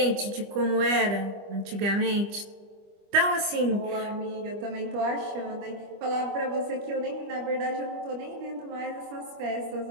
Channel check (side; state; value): left; late; 25 ms